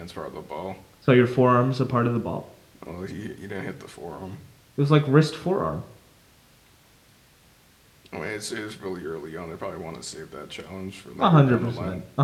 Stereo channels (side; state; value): both; identical; correlation 1.00